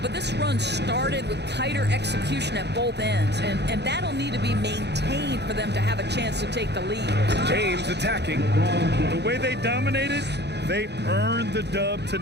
this run started with tighter execution at both ends, and that'll need to be maintained for them to have a chance to take the lead. James attacking. The way they dominated, they earned the dub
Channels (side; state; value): left; late; 0.49 ms